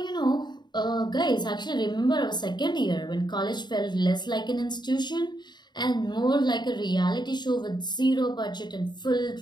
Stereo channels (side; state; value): right; late; 0.21 ms